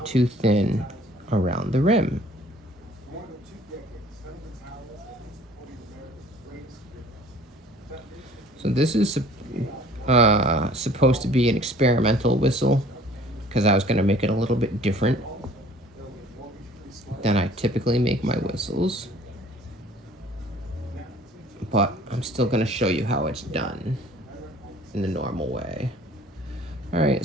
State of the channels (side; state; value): both; normal; correlation 0.52